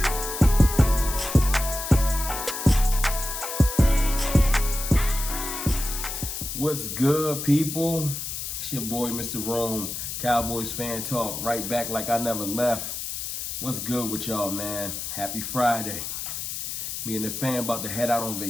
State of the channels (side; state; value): left; noise; hiss, 5 dB below the sound